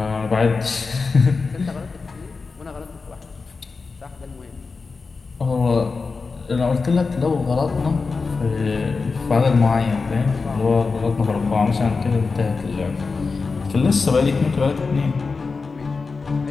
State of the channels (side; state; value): right; quieter; 4.4 dB